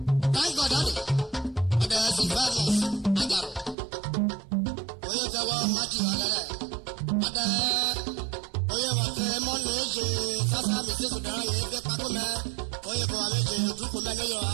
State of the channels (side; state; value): left; drops out; at 3.8 s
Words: Thank God daddy. Ọ̀dà Sylvanus Ajaro. Oyè kẹwọ́ Matthew Agẹrẹ. Ọ̀dà oyè wàkẹ́ mọ́nà èjè sásá mi sí sùdàrà yẹn fẹ́ pákó mẹ́. Oyè kẹwàá méje dúkú mẹ́ níyọ̀